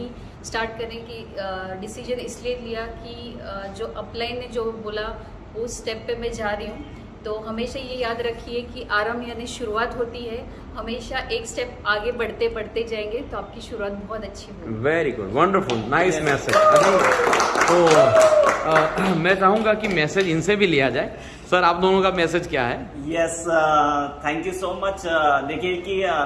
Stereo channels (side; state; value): both; identical; correlation 1.00